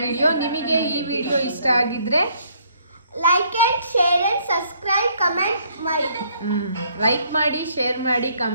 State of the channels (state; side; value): inverted; both; correlation -0.65